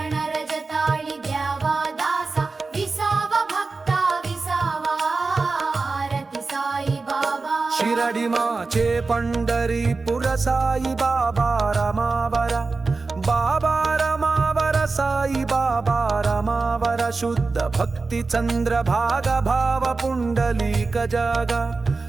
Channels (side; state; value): left; quieter; 3.9 dB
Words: रजताळी द्यावा दासा विसावा भक्ता शिरडी माचे पंढरीपुर साई बाबा रमावर बाबा रमावर साई बाबा रमावर शुद्ध भक्ती चंद्र भाग भाव पुंडलीक जागा